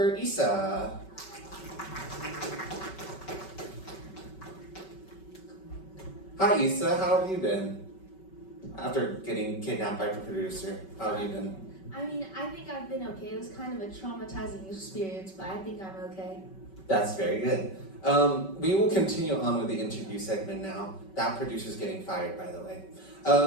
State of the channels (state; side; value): late; right; 5.3 ms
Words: Issa. Hi Issa, how have you been? After getting kidnapped by the producer, how have you been? I mean, I think I've been okay. It was kind of a traumatizing experience, but I think I'm okay. That's very good. We will continue on with the interview segment now. That producer's getting fired, by the way.